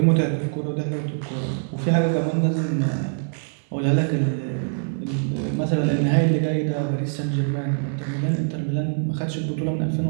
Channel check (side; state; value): left; silent; digital silence